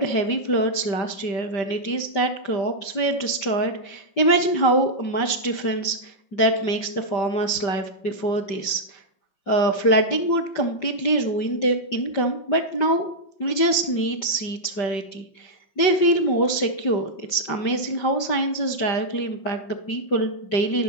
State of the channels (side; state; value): right; late; 5.1 ms